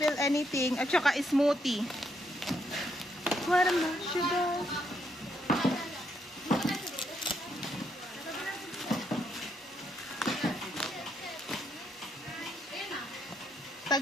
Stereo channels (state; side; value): normal; both; correlation 0.76